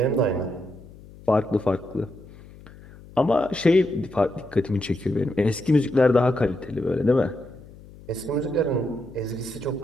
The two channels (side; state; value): left; noise; hum, 20 dB below the sound